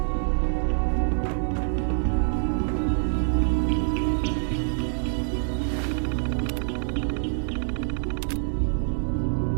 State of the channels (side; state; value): left; silent; digital silence